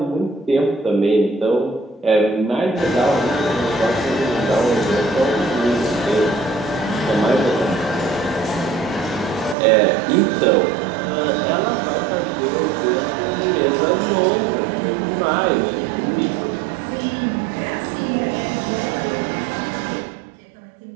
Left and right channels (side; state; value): left; drops out; at 9.6 s